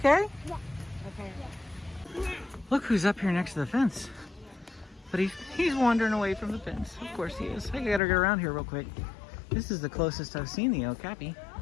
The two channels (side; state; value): right; drops out; at 8.0 s